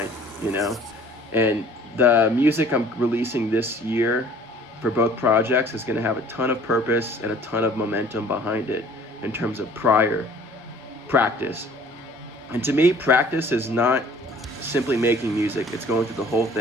You know, and the music I'm releasing this year for both projects is going to have a ton of purpose and a ton of momentum behind it in terms of prior practice. And to me, practice is not simply making music. It's going through the whole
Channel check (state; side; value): normal; both; correlation 0.52